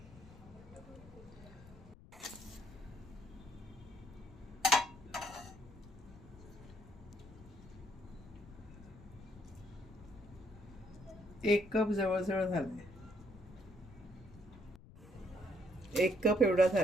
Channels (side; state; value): left; noise; rumble, 19 dB below the sound